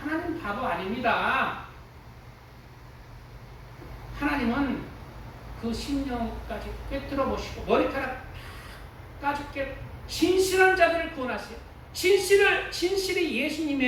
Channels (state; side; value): identical; both; correlation 1.00